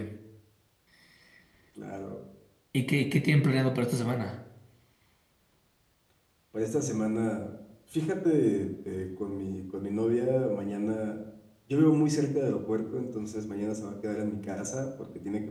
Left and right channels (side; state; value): both; identical; correlation 1.00